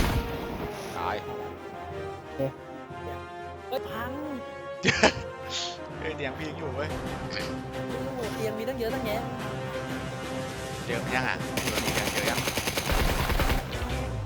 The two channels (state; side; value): identical; both; correlation 1.00